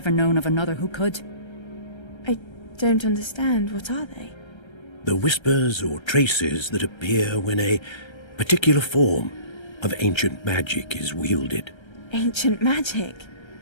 known of another who could. I don't understand. What are they? The whispers or traces that appear when a particular form of ancient magic is wielded. Ancient magic?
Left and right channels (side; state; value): right; late; 1.3 ms